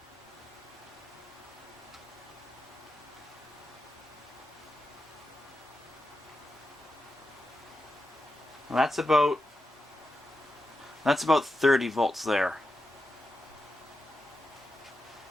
Well, that's about 30 volts there.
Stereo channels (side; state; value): both; normal; correlation 0.88